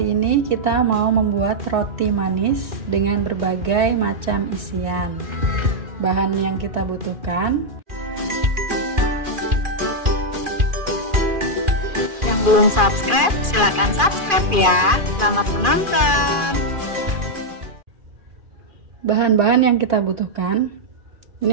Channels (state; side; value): late; left; 2.4 ms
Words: ini kita mau membuat roti manis dengan berbagai macam isian. Bahan yang kita butuhkan. Yang belum subscribe, silakan subscribe ya. Selamat menonton. Bahan-bahan yang kita butuhkan.